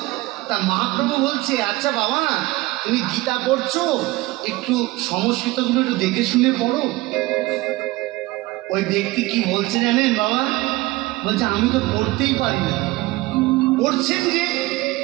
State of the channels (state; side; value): quieter; left; 20.1 dB